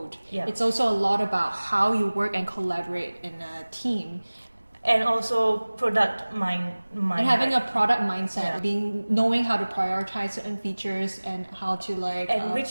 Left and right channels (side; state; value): both; inverted; correlation -1.00